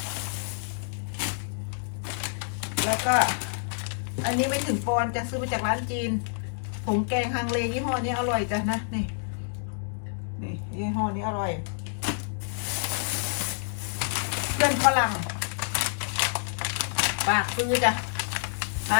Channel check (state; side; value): silent; right; digital silence